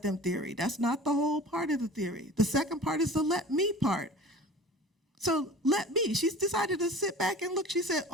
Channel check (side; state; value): both; normal; correlation 0.40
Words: them theory. That's not the whole part of the theory. The second part is the let me part. So let me. She's decided to sit back and look. She said,